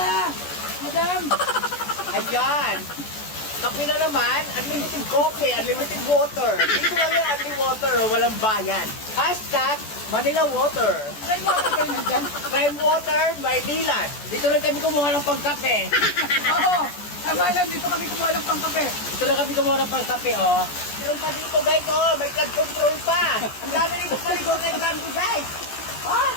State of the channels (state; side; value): late; right; 14 ms